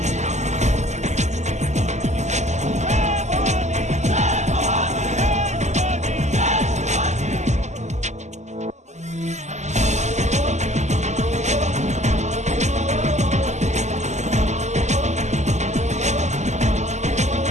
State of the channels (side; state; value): left; late; 0.33 ms